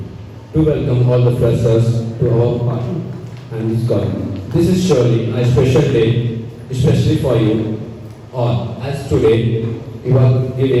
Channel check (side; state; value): both; identical; correlation 1.00